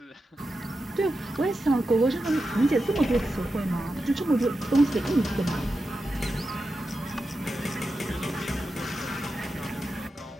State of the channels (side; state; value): both; normal; correlation 0.90